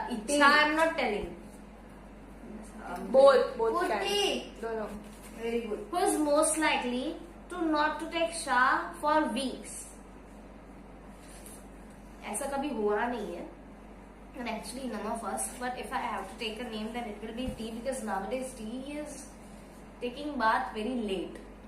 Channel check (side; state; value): both; identical; correlation 1.00